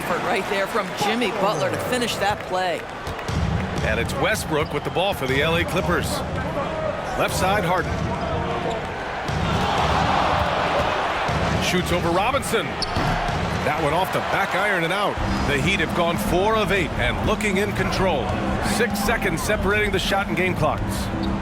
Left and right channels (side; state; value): both; identical; correlation 1.00